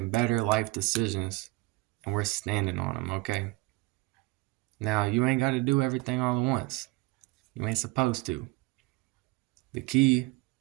better life decisions and we're standing on them, okay? Now, you ain't got to do everything all at once. You ain't supposed to. The key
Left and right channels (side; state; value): left; quieter; 22.5 dB